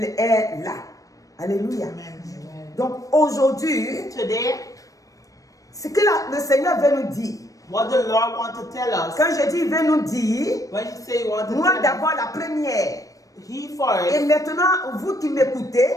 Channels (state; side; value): late; right; 0.16 ms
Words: est là. Alléluia. Amen. Donc aujourd'hui, Today, ce que le Seigneur veut nous dire, what the Lord wants to tell us, quand je dis il veut nous dire, when you say you want to moi tell us, d'abord la première, He et first, maintenant vous qui